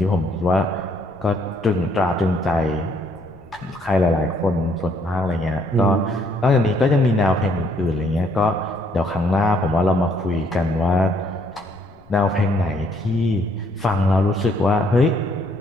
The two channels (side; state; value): left; noise; rumble, 26 dB below the sound